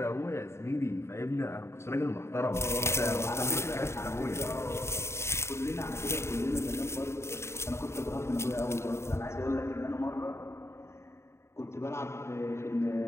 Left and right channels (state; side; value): late; right; 0.13 ms